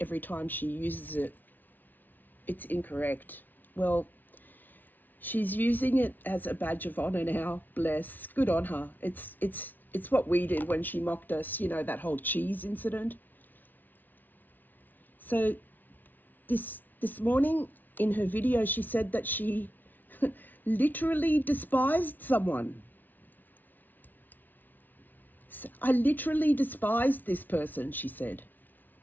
time she uses it, it's incorrect. Well, she's using it as a badge of honor now. Bless. Good on her. It's what we did when she mocked us, you know, that whole cheese incident. So this morning in her video, she said that she literally despised someone. I literally despised this person, she said.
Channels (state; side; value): late; right; 0.085 ms